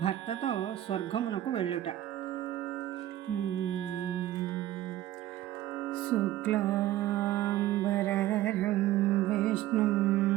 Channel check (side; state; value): left; quieter; 13.9 dB